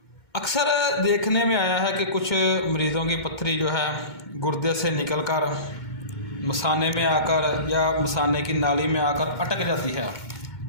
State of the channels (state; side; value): late; right; 2.2 ms